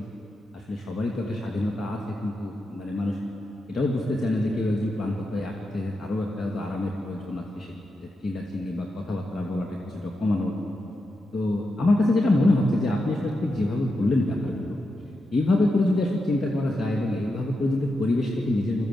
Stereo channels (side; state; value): both; normal; correlation 0.87